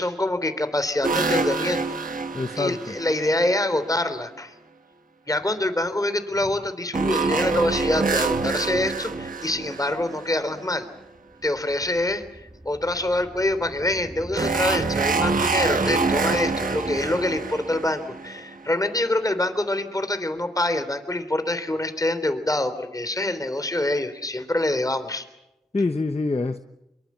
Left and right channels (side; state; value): both; normal; correlation 0.66